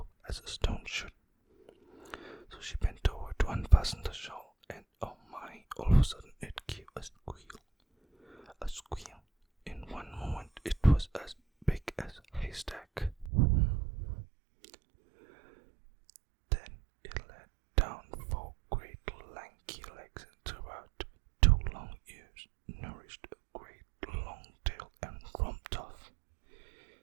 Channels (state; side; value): drops out; left; at 13.3 s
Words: as a stone should. So she bent over to unfasten the shawl, and oh my, all of a sudden it gave a squeal. A squeal. In one moment it was as big as a haystack. Then it let down 4 great lanky legs, and throughout 2 long ears nourished a great long tail, and romped off,